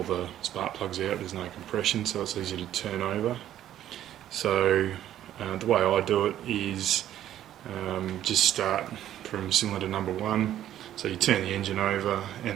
the spark plugs out there's no compression, so it's easy to turn over. So the way I do it is just start from cylinder number 1, so you turn the engine over,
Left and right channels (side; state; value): left; quieter; 11.9 dB